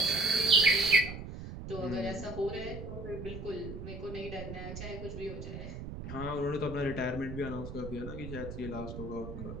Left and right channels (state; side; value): noise; right; rumble, 9 dB below the sound